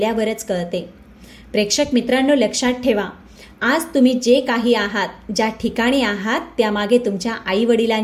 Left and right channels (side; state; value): both; identical; correlation 1.00